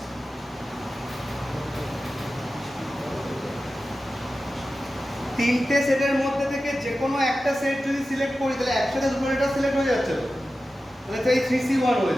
তিনটে সেটের মধ্যে থেকে যে কোনো একটা সেট যদি সিলেক্ট করি তাহলে একসাথে দুটো লেটার সিলেক্ট হয়ে যাচ্ছে তো। তাহলে তো এই 3C1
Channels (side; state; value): both; normal; correlation 0.94